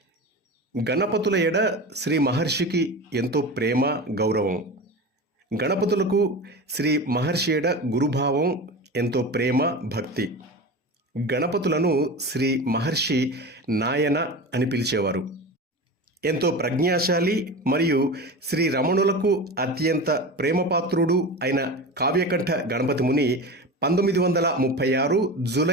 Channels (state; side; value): normal; both; correlation 0.29